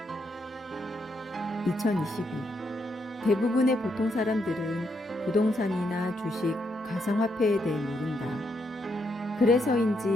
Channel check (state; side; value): normal; both; correlation 0.78